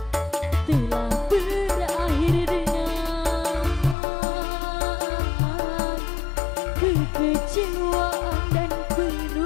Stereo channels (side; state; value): right; drops out; at 4.0 s